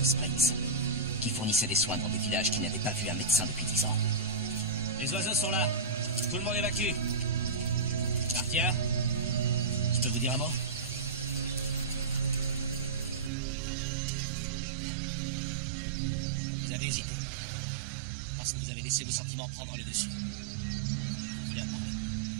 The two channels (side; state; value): left; drops out; at 13.3 s